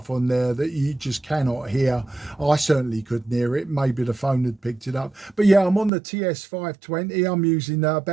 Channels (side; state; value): left; drops out; at 5.9 s